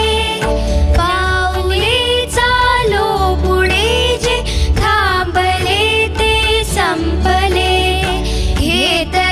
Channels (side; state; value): both; identical; correlation 1.00